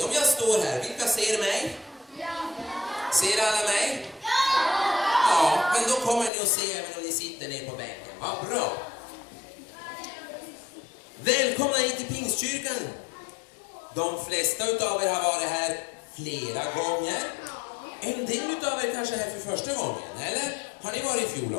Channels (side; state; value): right; drops out; at 6.3 s